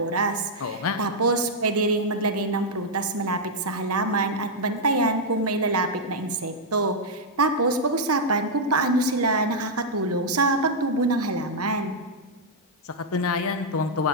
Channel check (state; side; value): normal; both; correlation -0.04